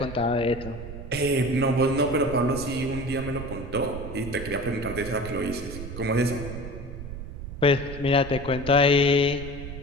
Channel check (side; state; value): right; noise; rumble, 10 dB below the sound